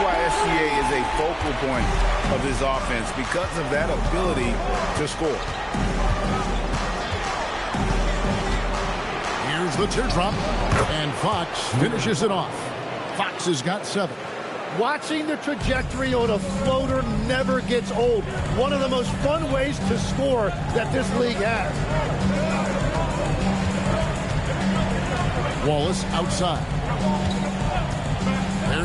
why SGA is a focal point of his offense, because of that ability to score. Here's the teardrop, and Fox finishes it off. Fox has got 7. Watching the trajectory on a floater never gets old. One of the most fun ways to score that this league has. Wallace outside.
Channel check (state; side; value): identical; both; correlation 1.00